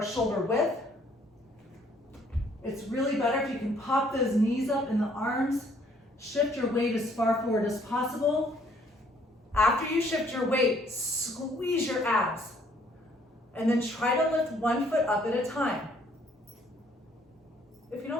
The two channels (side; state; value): both; normal; correlation 0.63